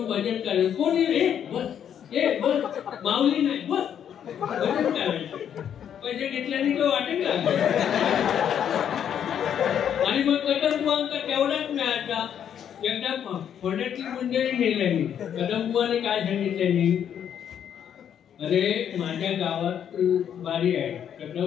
भजन करायचं. कोणी रे बस हे बस माऊली नाही बस भजन करायचं. पैसे घेतल्याने तो वाटेल का? आणि मग कदमबुवांका तेवढाच मिळायचा. एकदा फोड्यातली मंडळी नेल्यानी कदमबुवाने काय सांगितल्यानी, अरे माझ्या गावात बारी आहे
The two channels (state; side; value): quieter; right; 9.0 dB